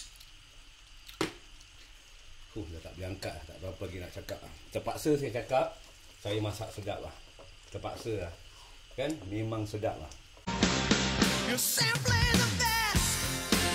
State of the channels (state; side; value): identical; both; correlation 1.00